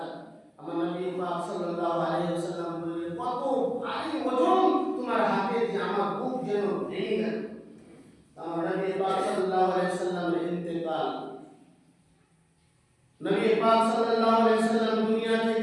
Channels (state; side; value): identical; both; correlation 1.00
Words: আমার নবী পাক সাল্লাল্লাহু আলাইহি ওয়াসাল্লাম বললেন, কত ভারী ওজন তোমার হাতে, যে আমার বুক যেন ভেঙে গেল। আমার নবী পাক সাল্লাল্লাহু আলাইহি ওয়াসাল্লামের ইন্তেকাল, নবী পাক সাল্লাল্লাহু আলাইহি ওয়াসাল্লাম দুনিয়া